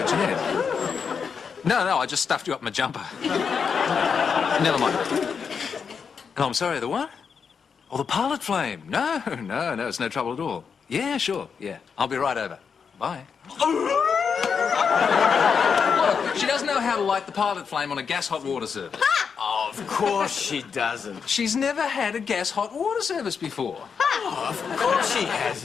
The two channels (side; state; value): right; quieter; 6.2 dB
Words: Jeanette. No, I just stuffed you up my jumper. Never mind. Oh, I'm sorry, the what? Oh, the pilot flame. No, it's no trouble at all. Yeah, sure, yeah. I'll be right over. Bye. Look, she doesn't know how to light the pilot flame on a gas hot water service. Oh, of course she doesn't. She's never had a gas hot water service before. Oh, of course she